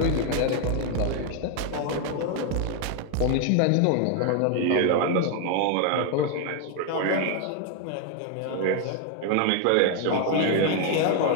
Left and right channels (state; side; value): different; both; correlation 0.01